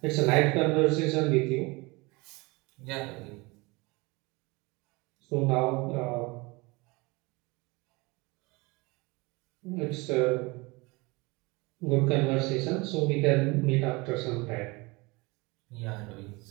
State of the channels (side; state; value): left; quieter; 25.1 dB